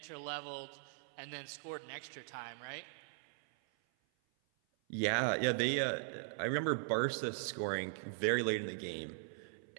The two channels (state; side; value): silent; left; 51 dB below the other